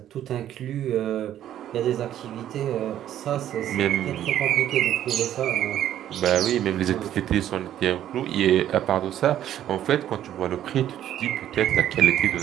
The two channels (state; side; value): quieter; left; 11.5 dB